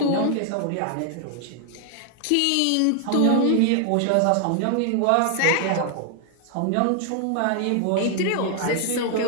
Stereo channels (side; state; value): both; different; correlation 0.00